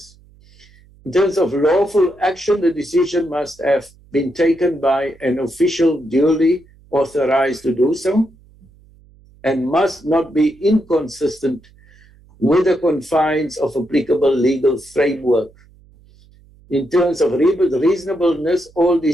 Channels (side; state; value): right; noise; hum, 28 dB below the sound